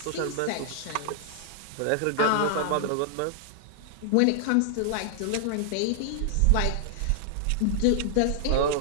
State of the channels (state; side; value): different; both; correlation -0.01